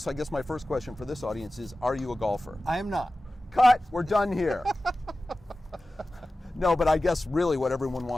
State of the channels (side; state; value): both; normal; correlation 0.95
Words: I guess my first question for this audience is, are you a golfer? I am not. Cut! We're done here. No, but I guess really what everyone